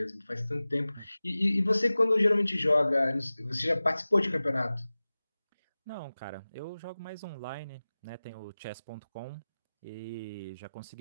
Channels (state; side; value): inverted; both; correlation -0.97